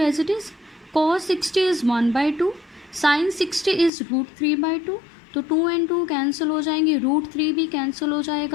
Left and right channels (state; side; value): drops out; right; at 3.9 s